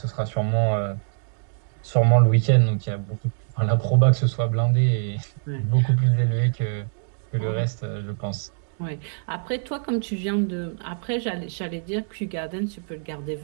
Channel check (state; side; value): silent; left; digital silence